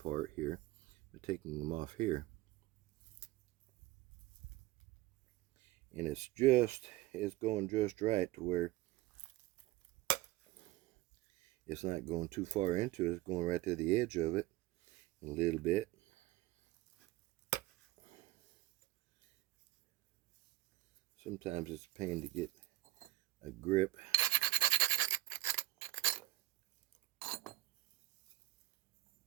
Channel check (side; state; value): left; quieter; 17.9 dB